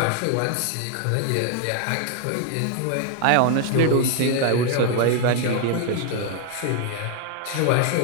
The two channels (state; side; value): different; both; correlation 0.00